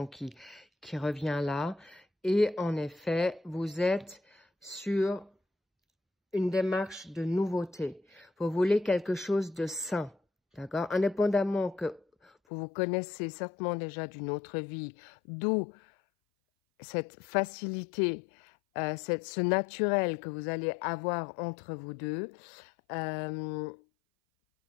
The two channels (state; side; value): drops out; right; at 12.3 s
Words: qui revient là. Et en effet, vous êtes sur une démarche de nouveauté. Vous voulez quelque chose de sain, d'accord? Indépendamment que Vous vous connaissez certainement déjà d'une autre vie, d'où cette facilité, ce naturel que vous allez avoir entre vous deux. On